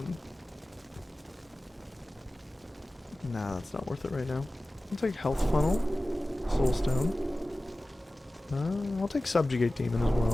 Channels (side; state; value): both; normal; correlation 0.96